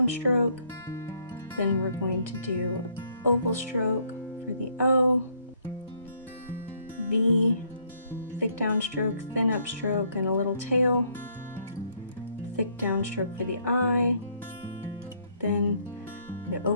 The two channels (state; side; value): inverted; both; correlation -0.67